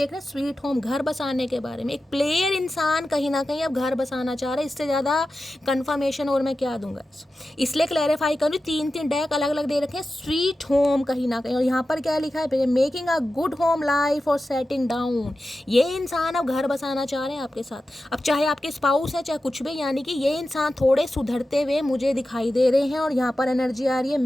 रहे हैं स्वीट होम, घर बसाने के बारे में। एक प्लेयर इंसान कहीं ना कहीं अब घर बसाना चाह रहा है। इससे ज़्यादा कंफर्मेशन और मैं क्या दूंगा, इसलिए क्लैरिफाई करूँ। 3 डेक अलग अलग दे रखे हैं, स्वीट होम कहीं ना कहीं, और यहाँ पर क्या लिखा है, making a good home life और सेटिंग डाउन। ये इंसान अब घर बसाना चाह रहे हैं आपके साथ। अब चाहे आपके स्पाउस है चाहे कुछ भी, यानी कि ये इंसान थोड़े सुधरते हुए मुझे दिखाई दे रहे हैं। और यहाँ पर एनर्जी आ रही है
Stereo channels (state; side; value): normal; both; correlation 0.93